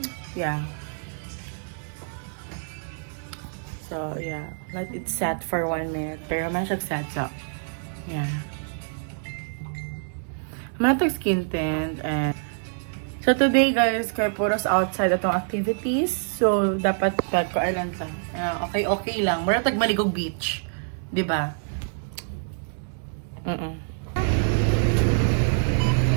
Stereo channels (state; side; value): silent; left; digital silence